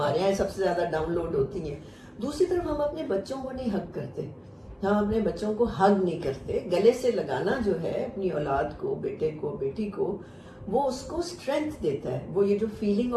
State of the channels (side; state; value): both; identical; correlation 1.00